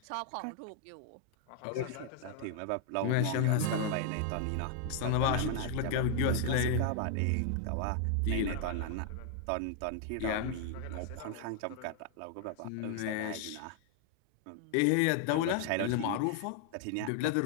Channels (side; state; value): both; different; correlation 0.00